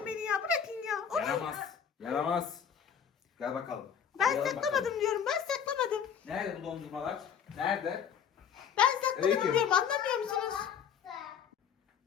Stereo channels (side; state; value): right; quieter; 7.8 dB